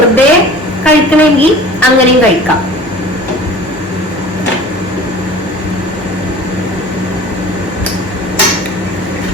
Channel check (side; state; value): both; normal; correlation 0.42